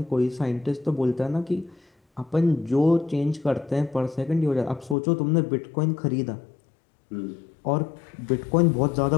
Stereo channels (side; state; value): right; drops out; at 5.0 s